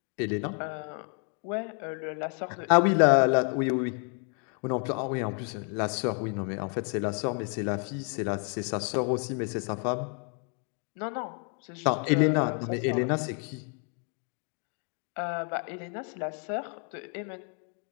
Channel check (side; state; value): right; quieter; 39.9 dB